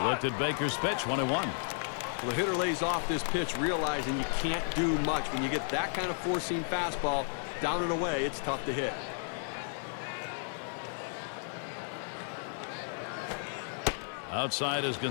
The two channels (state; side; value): silent; right; 56 dB below the other